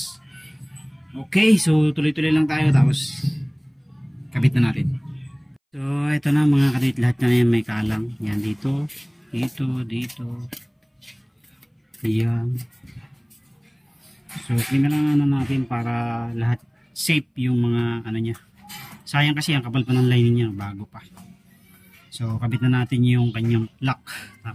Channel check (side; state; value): both; identical; correlation 1.00